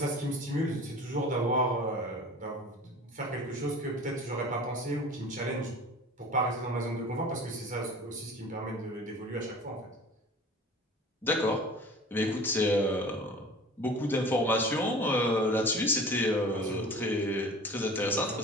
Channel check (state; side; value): normal; both; correlation 0.41